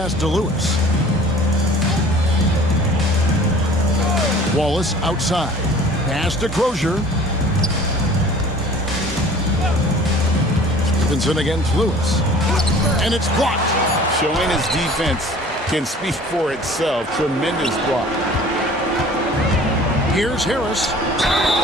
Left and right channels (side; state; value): both; normal; correlation 0.48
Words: to Lewis. Wallace outside. Pass to Crozier. Stevenson against Lewis. And it's blocked. Showing his defense can speak for itself. Tremendous block. Here's Harris.